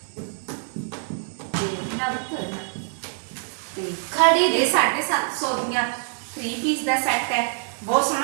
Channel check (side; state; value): left; silent; 62 dB below the other